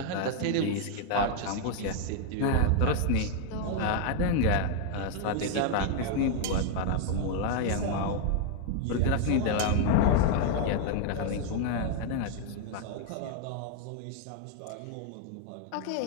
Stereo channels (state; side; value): different; both; correlation 0.00